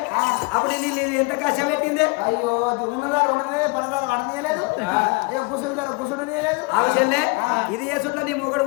అప్పుడు నీళ్ళు ఎంత కష్టం పెట్టిందే అయ్యో ఉన్నదారు ఉండదే పడదారు పడనీయలేదు అయ్యో కుసుడు కుసుడనీయలేదు అవసరంలే ఇది ఏ చుట్ల నీ మొగడు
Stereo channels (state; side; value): quieter; right; 28.3 dB